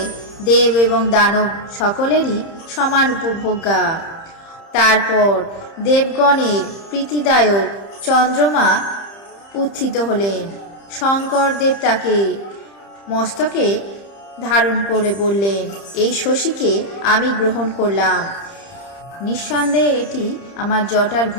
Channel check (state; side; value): late; right; 30 ms